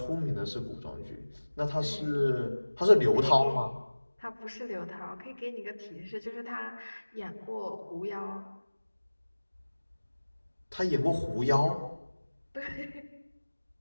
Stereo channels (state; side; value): inverted; both; correlation -1.00